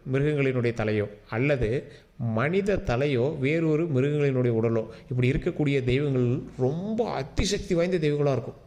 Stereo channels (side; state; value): both; identical; correlation 1.00